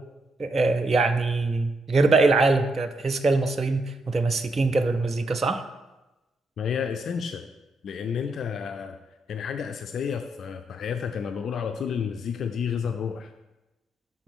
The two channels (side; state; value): both; normal; correlation 0.78